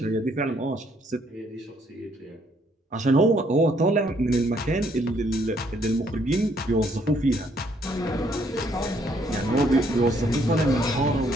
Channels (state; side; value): normal; both; correlation 0.68